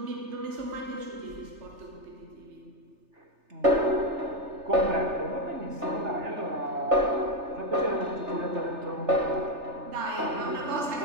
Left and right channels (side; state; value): left; late; 3.3 ms